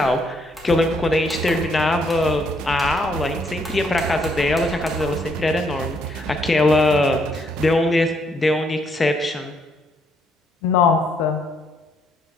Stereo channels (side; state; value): both; normal; correlation 0.71